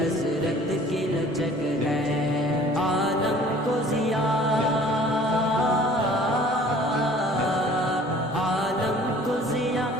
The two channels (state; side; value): normal; both; correlation 0.50